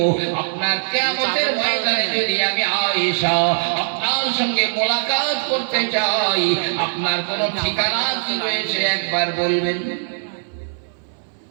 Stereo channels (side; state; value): left; silent; 65 dB below the other